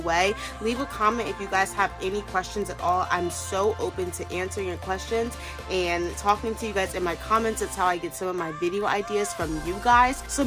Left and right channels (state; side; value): identical; both; correlation 1.00